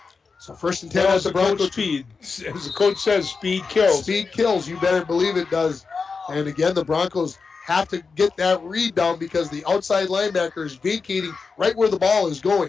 So 1st and 10 at the Bronco. Speed. As the coach says, speed kills. Speed kills. You better believe it does. And again, the Broncos have to get that read down because the outside linebacker is vacating right where the ball is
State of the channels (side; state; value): right; quieter; 4.8 dB